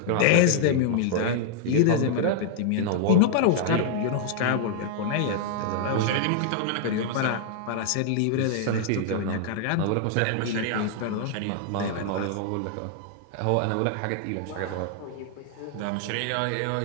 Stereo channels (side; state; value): both; different; correlation 0.00